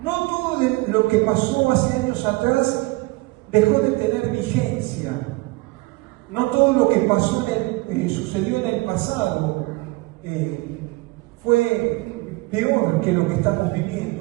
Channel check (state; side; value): quieter; left; 23.1 dB